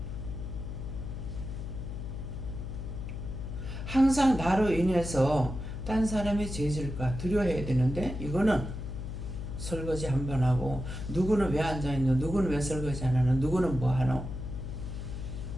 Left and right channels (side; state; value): left; noise; hum, 6 dB below the sound